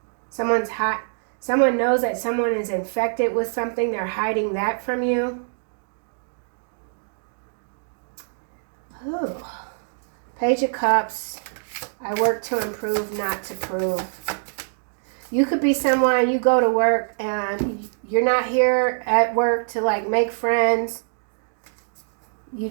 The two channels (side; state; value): left; silent; digital silence